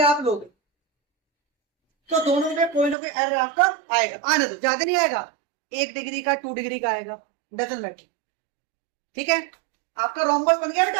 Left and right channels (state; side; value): drops out; left; at 3.0 s